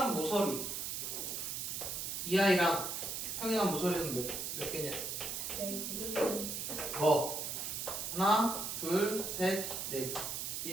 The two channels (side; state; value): right; noise; hiss, 3 dB below the sound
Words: 모서리 이 아이랑 평행한 모서리는 몇 개냐? 뭐? 하나, 둘, 셋, 넷.